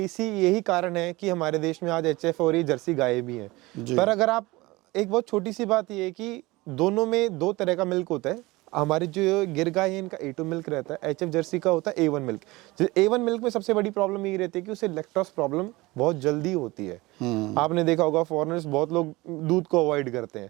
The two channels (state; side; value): quieter; left; 21.4 dB